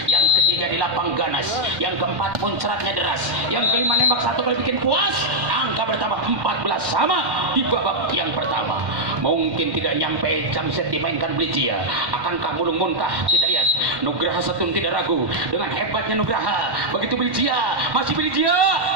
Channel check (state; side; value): late; left; 1.2 ms